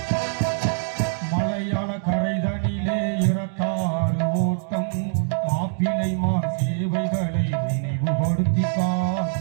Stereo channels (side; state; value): left; silent; digital silence